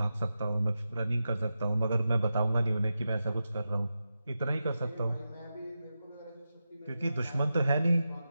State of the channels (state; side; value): inverted; both; correlation -0.90